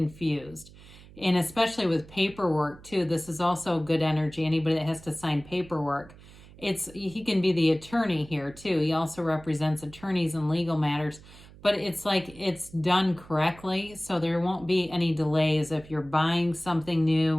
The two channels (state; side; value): noise; right; hum, 21 dB below the sound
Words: And especially with paperwork too, this is also good energy. Anybody that has to sign paperwork, he can be the attorney here too. He also represents attorneys in legal matters, but it's like it's done correctly. So there won't be any delays if you're buying something